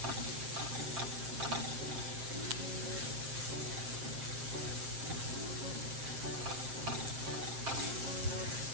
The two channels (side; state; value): left; late; 7.5 ms